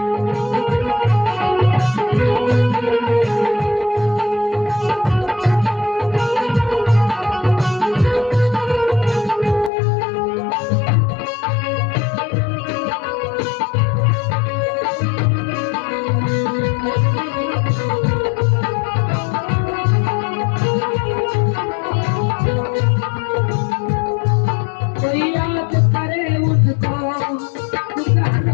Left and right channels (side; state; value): right; drops out; at 9.7 s